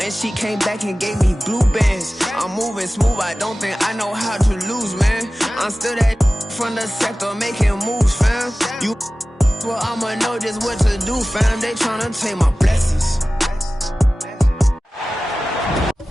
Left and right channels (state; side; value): normal; both; correlation 0.96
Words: and she came back and gave me blue bands. I'm moving smooth, I don't think I know how to lose, man. I'm still that from the sector making moves, fam. You well, I'ma know just what to do, fam. They tryna take my blessings.